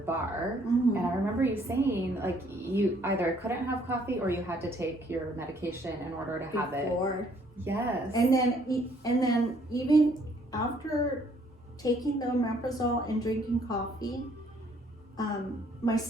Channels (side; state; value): both; normal; correlation 0.64